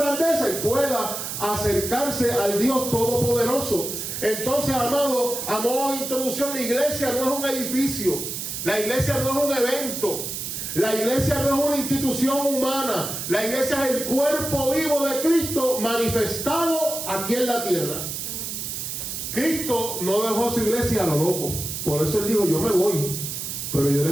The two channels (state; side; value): noise; right; hiss, 5 dB below the sound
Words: y pueda acercarse al Dios Todopoderoso. Entonces, amado, a modo de introducción, la iglesia no es un edificio, la iglesia no es un evento, la iglesia no es una institución humana, la iglesia es el cuerpo vivo de Cristo manifestado aquí en la tierra. Cristo no dejó su iglesia a lo loco, por eso Él dijo, yo me voy, pero yo